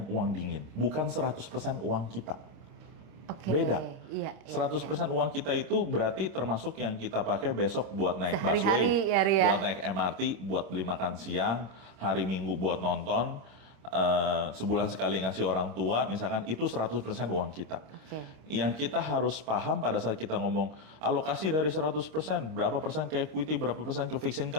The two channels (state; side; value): late; left; 26 ms